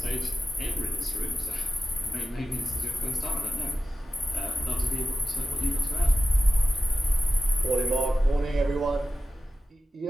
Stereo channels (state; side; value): normal; both; correlation 0.93